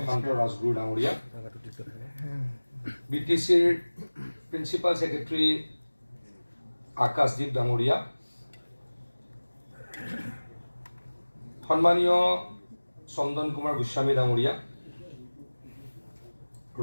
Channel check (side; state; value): both; inverted; correlation -1.00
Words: ৰাজগুৰু ডাঙৰীয়া, BTCৰ প্ৰিন্সিপাল ছেক্ৰেটাৰী আকাশদ্বীপ ডাঙৰীয়া, সন্মানীয় চন্দন কুমাৰ গোস্বামী ডাঙৰীয়া,